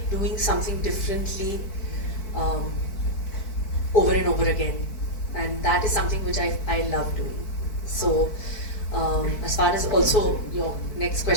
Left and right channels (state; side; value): late; right; 4.6 ms